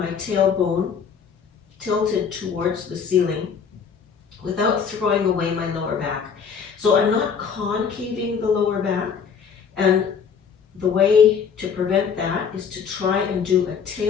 tailbone tilted towards the ceiling without throwing away my lower back. So I'm not concaving the lower back, and the way to prevent that is to try and do a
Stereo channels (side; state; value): right; quieter; 6.5 dB